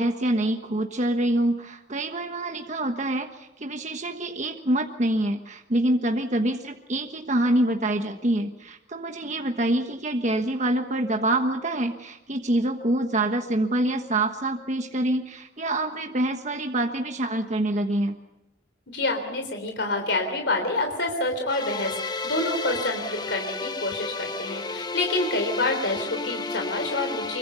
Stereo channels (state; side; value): normal; both; correlation 0.38